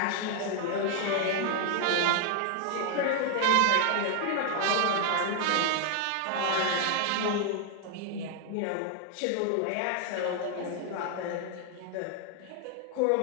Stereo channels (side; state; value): both; different; correlation 0.00